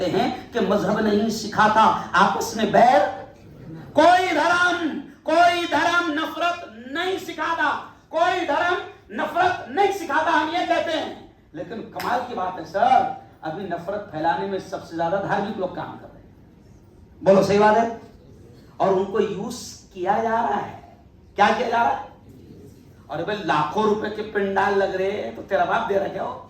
हैं कि मजहब नहीं सिखाता आपस में बैर, कोई धर्म नफरत नहीं सिखाता, कोई धर्म नफरत नहीं सिखाता, हम ये कहते हैं। लेकिन कमाल की बात है सर, अभी नफरत फैलाने में सबसे ज्यादा धार्मिक लोग काम कर रहे हैं, बोलो सही बात है, और उनको यूज किया जा रहा है। क्या किया जा रहा है? और भाई लाखों रुपए के पिंडाल लग रहे हैं तो तेरा बाप दे रहा क्या हो?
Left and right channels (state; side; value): identical; both; correlation 1.00